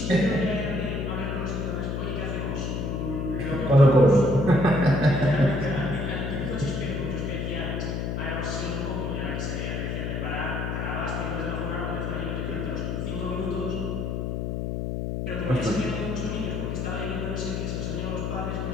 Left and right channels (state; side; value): noise; left; hum, 2 dB below the sound